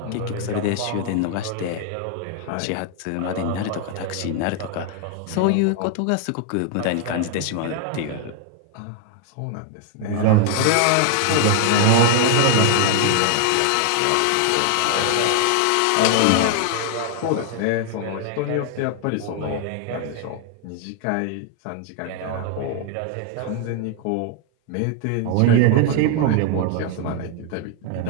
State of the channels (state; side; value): different; both; correlation 0.00